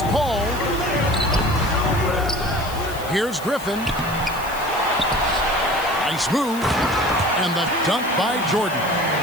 Paul. Here's Griffin. Nice move. And the dunk by Jordan.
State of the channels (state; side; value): noise; left; hiss, 15 dB below the sound